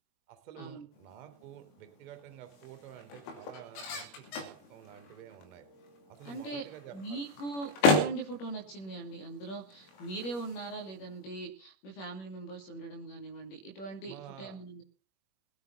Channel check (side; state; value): right; late; 21 ms